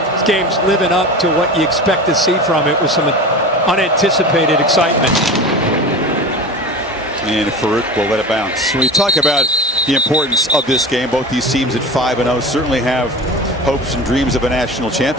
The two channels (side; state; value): both; normal; correlation 0.31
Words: This game's living up to what you expect to see from it with some unanticipated excitement. And Farouk will let it bounce. When we talk about the importance of this game, both these teams at 5-0 certainly have hopes and dreams of a national